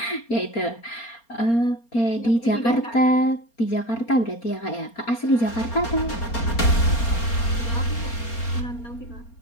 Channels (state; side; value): late; right; 4.3 ms